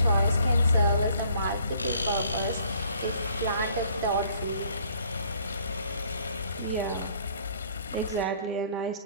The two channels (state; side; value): inverted; both; correlation -0.60